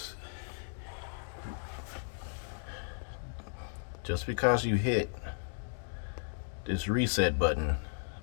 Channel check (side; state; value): right; silent; digital silence